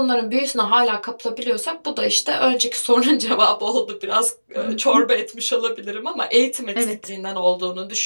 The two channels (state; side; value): inverted; both; correlation -1.00